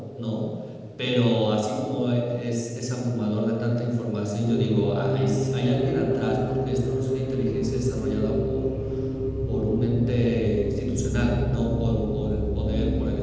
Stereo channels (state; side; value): identical; both; correlation 1.00